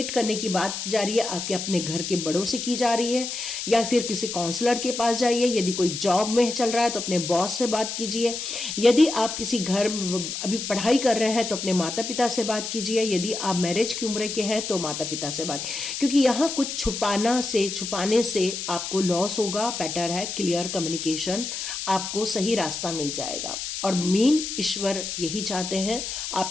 करने की बात की जा रही है आपके अपने घर के बड़ों से की जा रही है, या फिर किसी काउंसलर के पास जाइए। यदि कोई जॉब में चल रहा है तो अपने बॉस से बात कीजिए। यदि आप किसी घर अभी पढ़ाई कर रहे हैं तो अपने माता पिता से बात कीजिए। यदि आप मैरिज की उम्र के हैं तो माता पिता से बात, क्योंकि यहाँ कुछ छुपाने से आपको लॉस होगा। बेटर है क्लियर कम्युनिकेशन, आपको सही रास्ता मिल जाएगा। और मेन ईश्वर यही चाहते हैं,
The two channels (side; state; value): left; noise; hiss, 5 dB below the sound